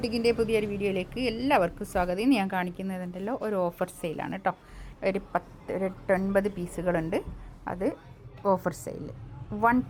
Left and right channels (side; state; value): both; identical; correlation 1.00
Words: പുതിയൊരു വീഡിയോയിലേക്ക് എല്ലാവർക്കും സ്വാഗതം. ഇന്ന് ഞാൻ കാണിക്കുന്നതുണ്ടല്ലോ ഒരു ഓഫർ സെയിലാണ് കേട്ടോ. ഒരു 9 പീസുകളുണ്ട്. അത് ഓഫർ സെയിൽ